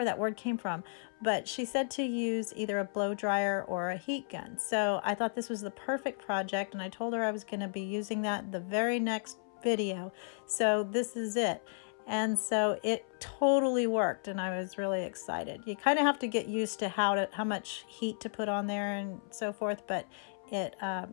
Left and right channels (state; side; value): silent; right; 55 dB below the other